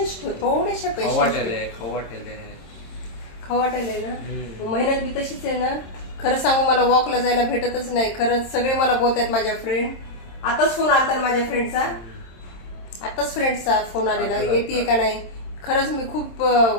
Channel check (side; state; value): right; late; 27 ms